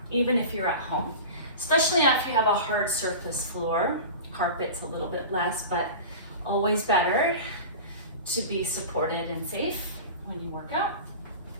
even if you're at home, especially if you have a hard surface floor. Carpet's a little bit less, but always better to be supported and safe when you work out.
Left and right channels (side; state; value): both; inverted; correlation -0.32